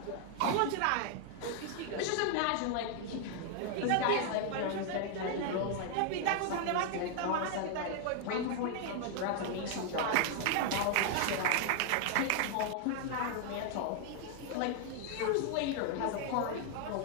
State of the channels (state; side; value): different; both; correlation 0.00